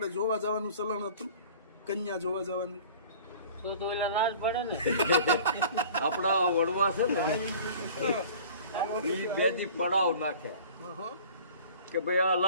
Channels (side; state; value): both; inverted; correlation -0.45